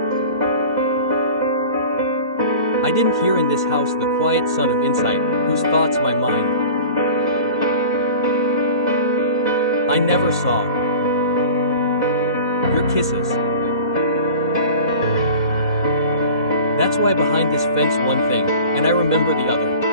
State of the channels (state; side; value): late; right; 2.0 ms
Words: didn't hear in this house the quiet son of insight, whose thoughts my mind. I never saw your kisses. That's why behind this fence one thing, and I remember the other.